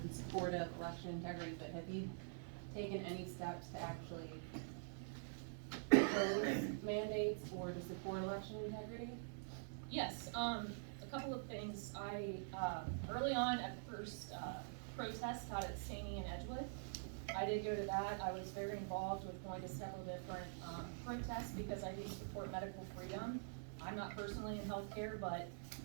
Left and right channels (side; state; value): left; silent; digital silence